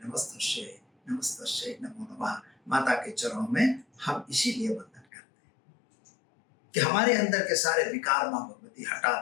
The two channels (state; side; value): drops out; right; at 5.1 s